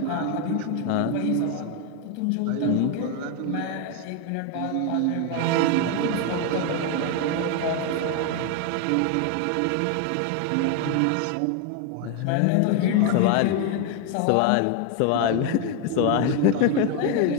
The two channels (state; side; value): different; both; correlation 0.01